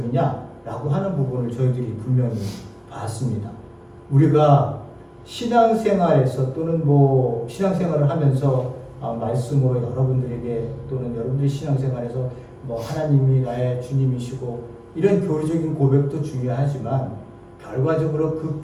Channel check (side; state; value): both; identical; correlation 1.00